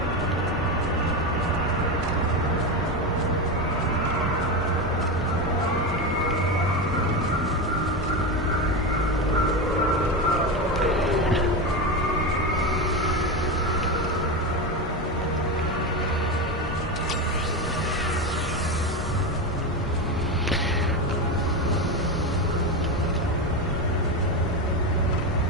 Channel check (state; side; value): normal; both; correlation 0.17